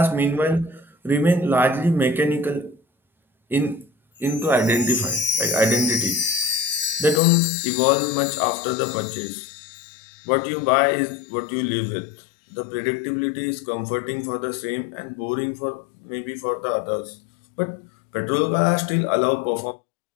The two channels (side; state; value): right; drops out; at 7.2 s